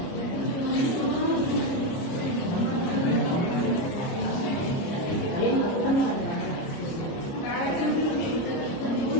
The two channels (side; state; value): right; late; 29 ms